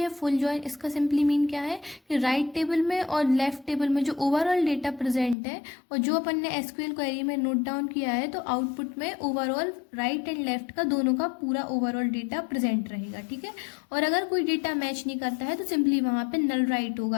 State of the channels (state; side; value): drops out; right; at 5.4 s